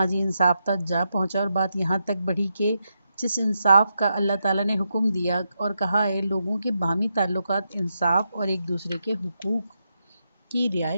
انصاف تک جا پہنچا اور بات یہاں تک بڑھی کہ جس انصاف کا اللہ تعالیٰ نے حکم دیا اور کہا ہے لوگوں کے باہمی تعلقات انصاف اور ایک دوسرے کے حقوق کی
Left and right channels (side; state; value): both; inverted; correlation -0.84